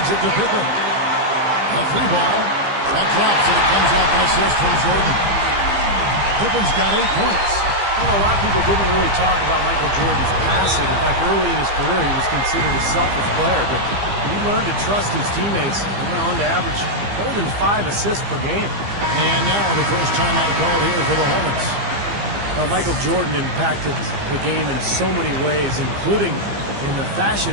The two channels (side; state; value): left; late; 15 ms